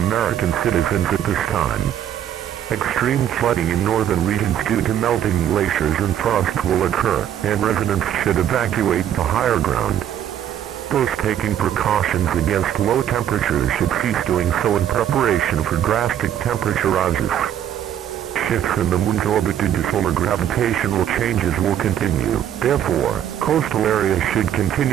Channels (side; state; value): left; quieter; 10.3 dB